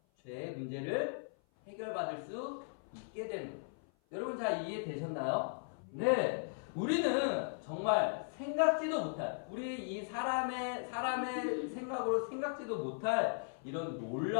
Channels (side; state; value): right; silent; 53 dB below the other